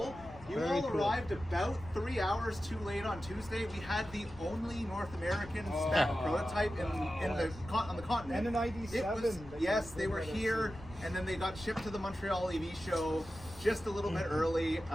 You all arrived about 3 hours too late on Tuesday. We had the only North American spec prototype on the continent. And an ID.7. Yes, they were here, and then they got shipped to the Montreal EV show just a little bit early.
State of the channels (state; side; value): noise; left; rumble, 17 dB below the sound